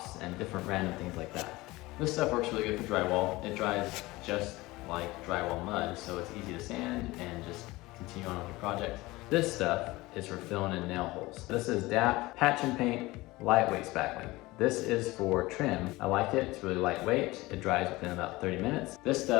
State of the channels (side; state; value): right; quieter; 20.4 dB